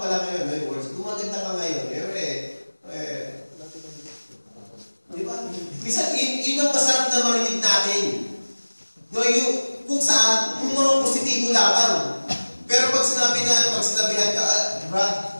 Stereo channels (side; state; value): both; inverted; correlation -1.00